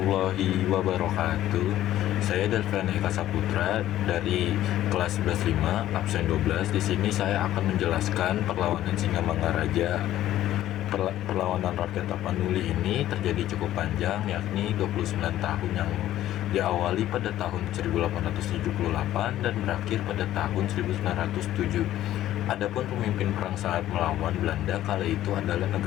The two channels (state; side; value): quieter; right; 13.3 dB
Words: wabarakatuh. Saya Delvan Eka Saputra dari kelas 11.5 absen 12. Di sini saya akan menjelaskan perlawanan Singamangaraja. Perlawanan rakyat Tapanuli ini terjadi cukup panjang, yakni 29 tahun, yang diawali pada tahun 1878 dan berakhir pada tahun 1907. Adapun pemimpin perang saat melawan Belanda kala itu adalah